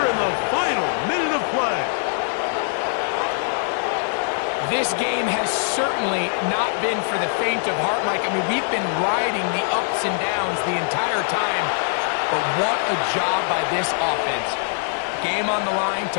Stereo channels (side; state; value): right; silent; digital silence